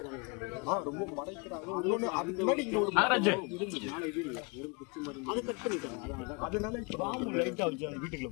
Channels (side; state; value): right; quieter; 31.3 dB